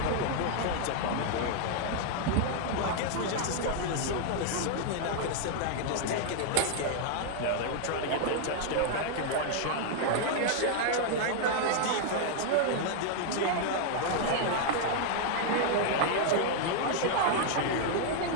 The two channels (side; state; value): both; different; correlation 0.00